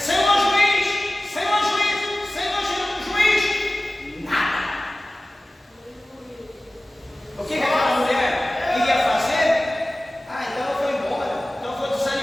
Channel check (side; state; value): both; normal; correlation 0.97